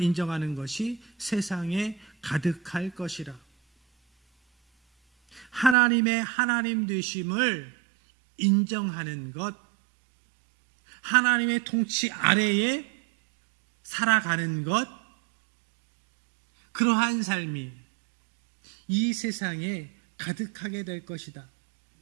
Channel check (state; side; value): drops out; left; at 5.8 s